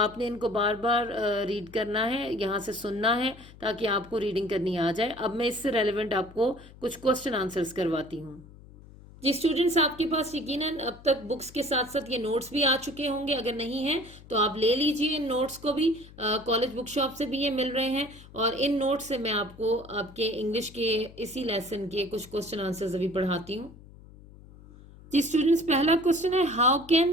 آپ نے ان کو بار بار ریڈ کرنا ہے، یہاں سے سننا ہے تاکہ آپ کو ریڈنگ کرنی آ جائے۔ اب میں اس سے ریلیونٹ آپ کو کچھ کوسچن آنسرز کرواتی ہوں۔ جی اسٹوڈنٹس، آپ کے پاس یقیناً اب تک بکس کے ساتھ ساتھ یہ نوٹس بھی آ چکے ہوں گے، اگر نہیں ہیں تو آپ لے لیجئے ان نوٹس کو بھی، کالج بک شاپ سے بھی یہ مل رہے ہیں، اور ان نوٹس سے میں آپ کو آپ کے انگلش کے اسی لیسن کے کچھ کوسچن آنسرز ابھی پڑھاتی ہوں۔ جی اسٹوڈنٹس، پہلا کوسچن ہے، how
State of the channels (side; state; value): left; noise; hum, 20 dB below the sound